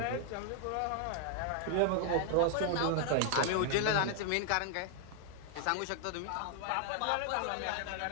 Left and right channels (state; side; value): different; both; correlation 0.00